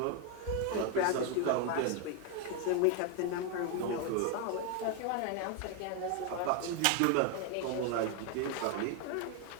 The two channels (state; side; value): different; both; correlation 0.01